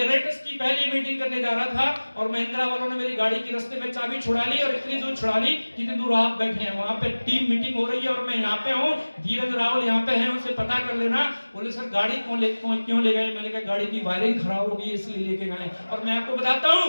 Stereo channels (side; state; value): both; inverted; correlation -1.00